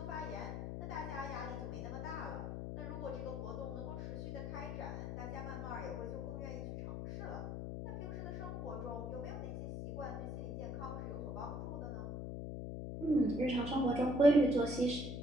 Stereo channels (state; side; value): noise; left; hum, 4 dB below the sound